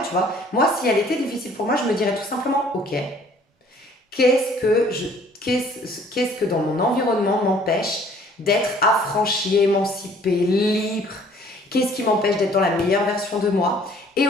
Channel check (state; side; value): normal; both; correlation 0.56